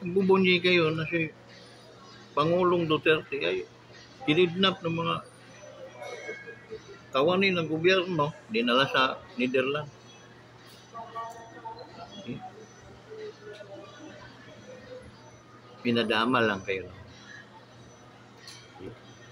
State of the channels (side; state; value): both; identical; correlation 1.00